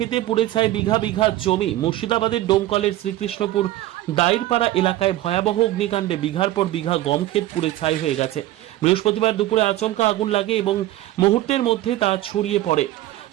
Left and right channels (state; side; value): quieter; left; 15.4 dB